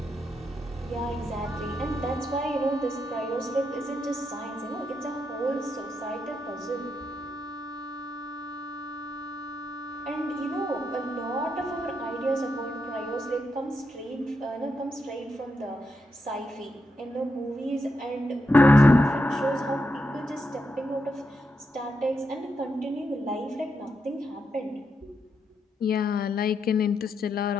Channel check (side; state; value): both; normal; correlation 0.83